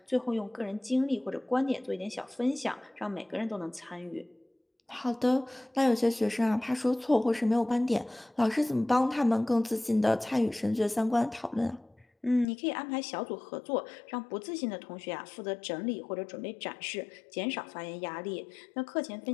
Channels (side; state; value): right; drops out; at 12.5 s